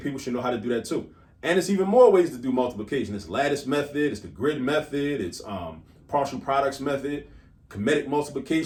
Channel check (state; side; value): identical; both; correlation 1.00